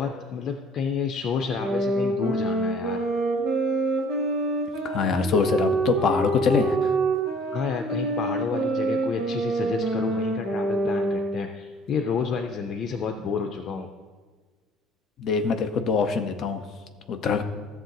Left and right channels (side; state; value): both; normal; correlation 0.54